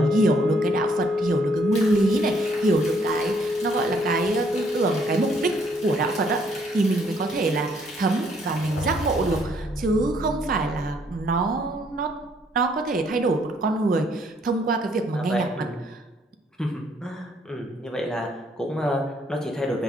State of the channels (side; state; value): both; normal; correlation 0.67